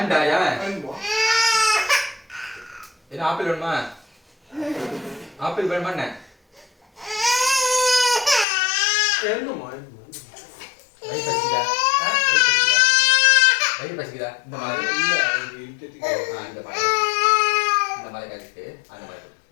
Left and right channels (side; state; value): right; drops out; at 8.5 s